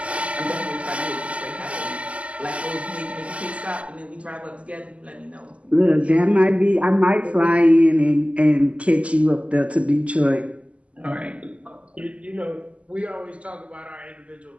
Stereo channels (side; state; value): left; late; 0.061 ms